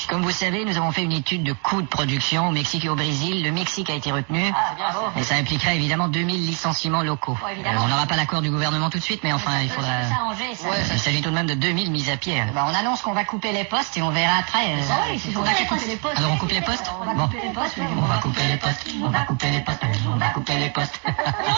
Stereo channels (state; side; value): quieter; left; 37.5 dB